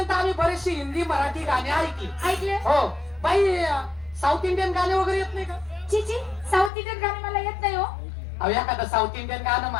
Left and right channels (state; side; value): drops out; right; at 6.7 s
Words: आम्ही बरेचशी हिंदी मराठी गाणी ऐकली. ऐकले? हो बाई साऊथ इंडियन गाणे वगैरे येत नाही का? चिची साऊथ इंडियन गाणे मला येत नाही हो. अहो एखादं साऊथ इंडियन गाणं